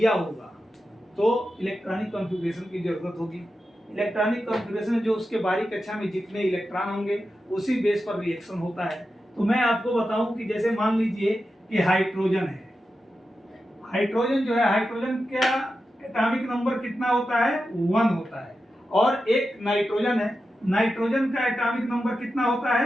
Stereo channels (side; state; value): both; normal; correlation 0.91